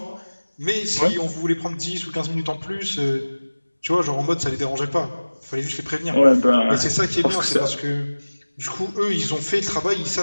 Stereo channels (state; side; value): inverted; both; correlation -1.00